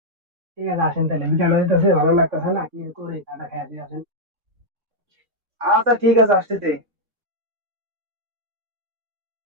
ঠিক আছে, আসেন তাহলে। বিকাল হয়ে যেতেছে, ভালো লাগতেছে না। কি করি, চাটা খেয়ে আসি, আসেন। আচ্ছা ঠিক আছে, আসতেছে।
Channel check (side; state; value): left; late; 3.6 ms